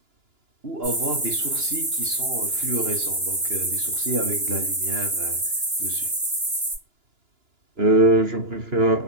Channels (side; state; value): left; late; 2.9 ms